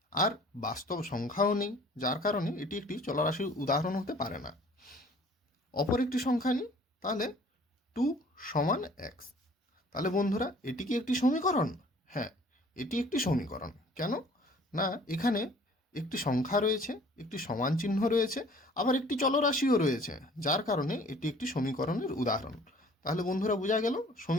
আর বাস্তব সংখ্যাও নেই, যার কারণে এটি একটি চলরাশির উদাহরণ হতে পারে না। অপর একটি সংখ্যা নিই, তাহলে 2 সমান x। তাহলে বন্ধুরা এটি কি একটি সমীকরণ? হ্যাঁ, এটি একটি সমীকরণ। কেন? না, এখানে একটি সংখ্যা রয়েছে, একটি সমান চিহ্ন রয়েছে, আবার একটি চলরাশিও রয়েছে, যার কারণে এটি একটি সমীকরণের উদাহরণ। তাহলে বন্ধুরা বোঝা গেল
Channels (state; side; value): normal; both; correlation 0.53